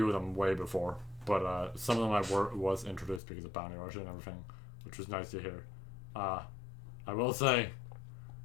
of them way before, but some of them was introduced because of Bounty Rush and everything, which was nice to hear. I will say,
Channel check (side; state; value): right; drops out; at 3.2 s